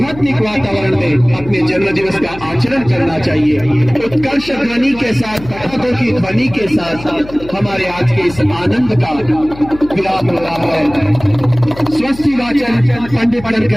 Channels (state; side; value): noise; left; hum, 16 dB below the sound